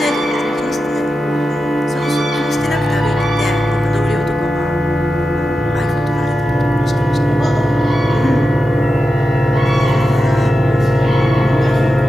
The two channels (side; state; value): both; normal; correlation 0.91